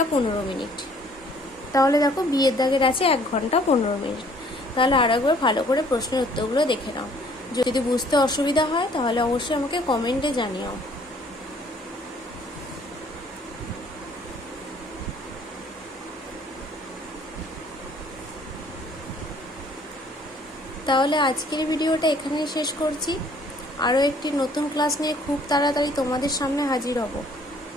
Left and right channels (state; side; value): normal; both; correlation 0.59